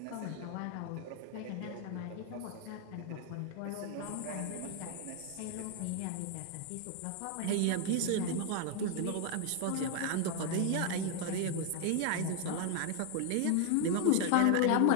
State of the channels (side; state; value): both; different; correlation 0.01